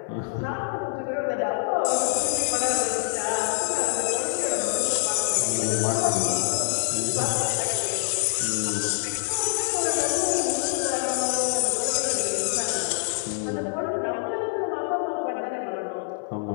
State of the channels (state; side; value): silent; right; digital silence